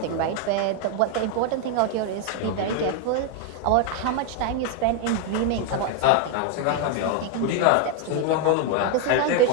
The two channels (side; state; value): both; different; correlation 0.01